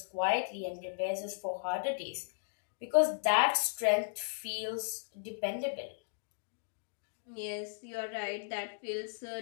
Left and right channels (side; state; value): right; silent; digital silence